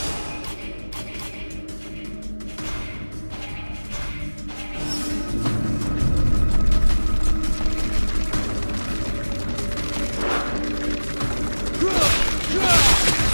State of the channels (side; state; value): both; inverted; correlation -1.00